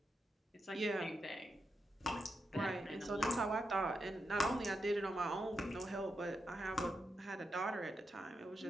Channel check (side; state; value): both; normal; correlation 0.85